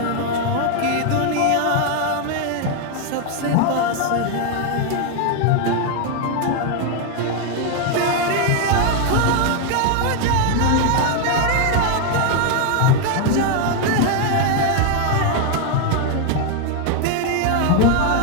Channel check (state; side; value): different; both; correlation 0.01